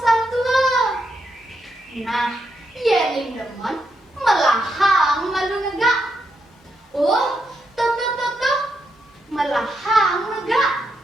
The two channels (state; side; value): normal; both; correlation 0.82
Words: Nah, yeling demen melahang malu negak. Oh, tuh, melahang negak.